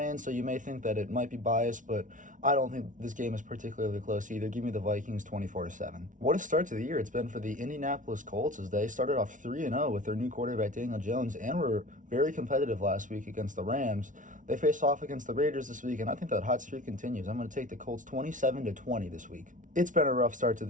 so you may think that it might be biased, but I don't think this game is particularly close either. Give me the Vikings 24-7. What a start to the year it's been for the Indianapolis Colts, as they started off 3-0 with their new quarterback Daniel Jones and were very competitive last week against the Rams. They face off against the Raiders this week, and I think that hot streak continues. I'm going to take the Colts 27-20 this week. It's been a rough start to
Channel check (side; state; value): left; late; 0.37 ms